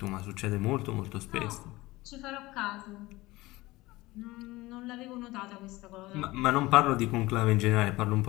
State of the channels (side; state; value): right; quieter; 19.8 dB